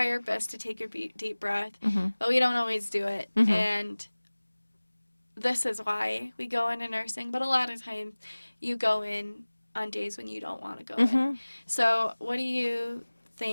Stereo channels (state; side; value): inverted; both; correlation -1.00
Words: our best to take a deep breath, but we don't always do it. And this is why we go into nursing, but a lot of times you go in on days when you don't want to go in. So what do you